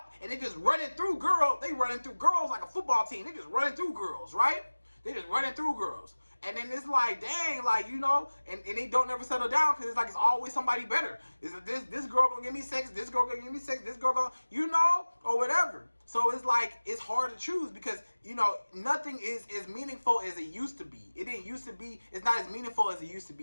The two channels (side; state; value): both; inverted; correlation -1.00